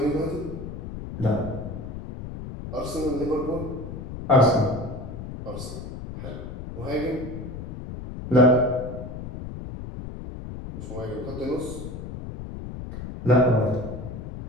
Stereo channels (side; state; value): left; noise; rumble, 9 dB below the sound